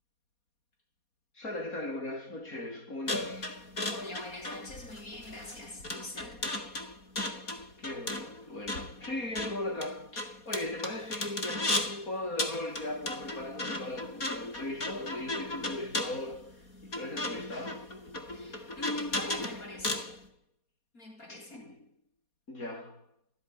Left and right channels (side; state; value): right; late; 4.2 ms